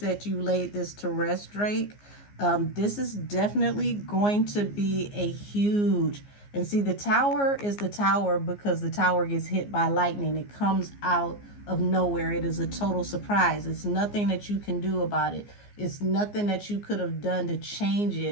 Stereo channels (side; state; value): right; late; 14 ms